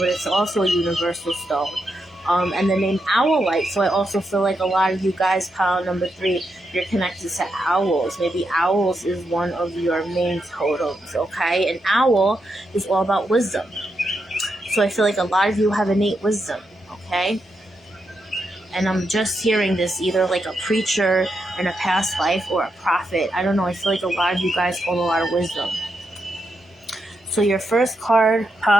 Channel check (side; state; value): both; normal; correlation 0.84